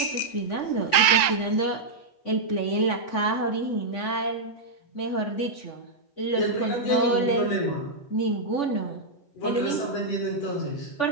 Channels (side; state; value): right; late; 8.0 ms